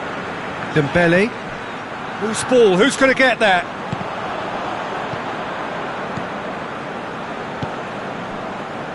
Dembele. Loose ball, who's going to get that?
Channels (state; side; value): identical; both; correlation 1.00